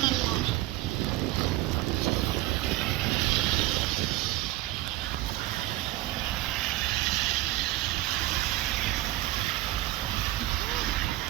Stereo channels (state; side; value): quieter; left; 16.8 dB